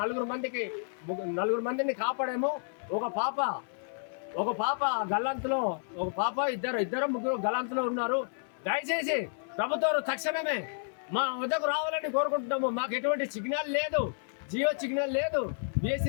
4 మందిని కాపాడేమో. ఒక పాప గల్లంతులో, ఒక పాప ఇద్దరు ముగ్గురు గల్లంతులో ఉన్నారు. దయచేసి ప్రభుత్వం తక్షణమే మా వద్దకు రావాలని కోరుకుంటున్నాము. మాకు ఎటువంటి సిగ్నల్ లేదు, జియో సిగ్నల్ లేదు,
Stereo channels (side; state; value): right; silent; 57 dB below the other